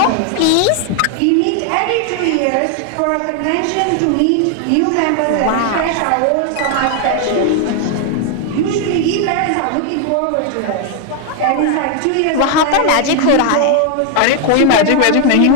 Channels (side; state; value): both; different; correlation 0.00